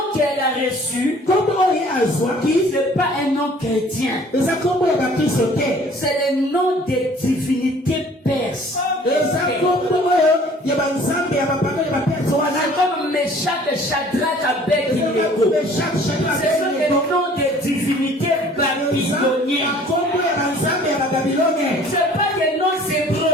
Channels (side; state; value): both; normal; correlation 0.52